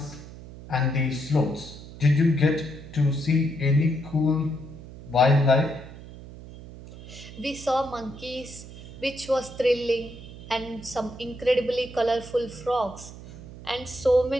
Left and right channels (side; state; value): right; noise; hum, 15 dB below the sound